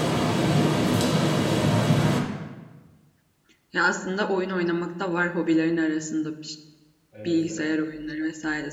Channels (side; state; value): both; identical; correlation 1.00